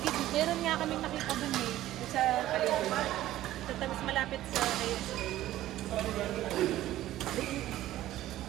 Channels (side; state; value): left; quieter; 14.3 dB